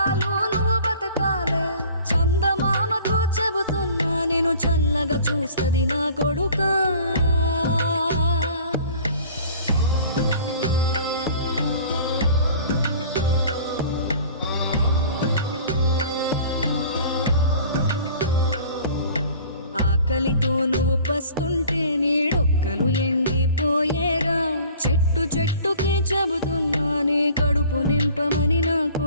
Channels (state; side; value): inverted; both; correlation -0.47